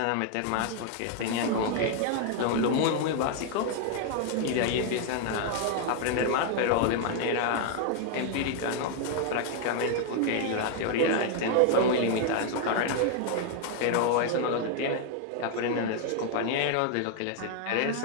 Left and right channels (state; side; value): different; both; correlation 0.00